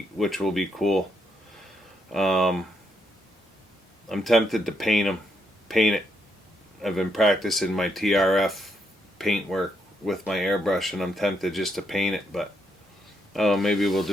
cool. I'm tempted to paint it. I've been practicing my TRF paint work with my airbrush, and I'm tempted just to paint it, but Oh, maybe we'll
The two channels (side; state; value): both; normal; correlation 0.77